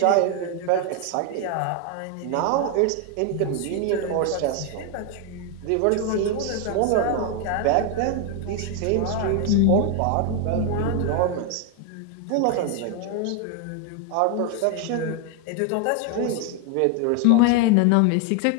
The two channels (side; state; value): both; different; correlation 0.01